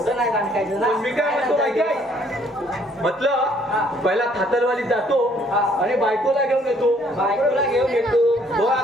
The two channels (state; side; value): normal; both; correlation 0.63